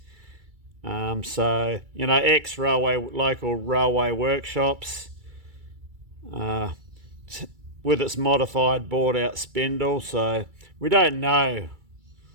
So, ex-railway, local railway workshops with its modified bored-out spindle. So we don't know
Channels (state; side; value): late; left; 2.3 ms